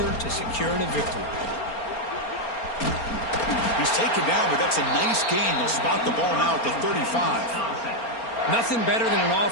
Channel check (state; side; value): late; right; 4.3 ms